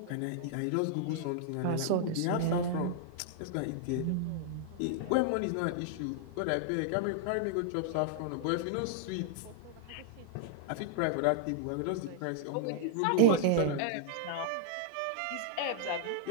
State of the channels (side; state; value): both; different; correlation -0.01